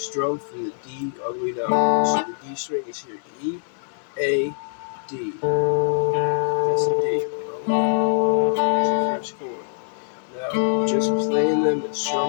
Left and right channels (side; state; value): right; silent; digital silence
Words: from the D all the way down. So the D string is here, E, A, D. That's the D. That's the first chord. Now, just playing them and